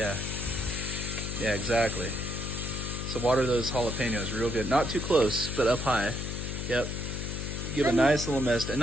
exactly. So water those jalapenos real good. Not too close, but up high. Yep. Give a nice little mist, and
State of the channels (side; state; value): left; noise; hum, 4 dB below the sound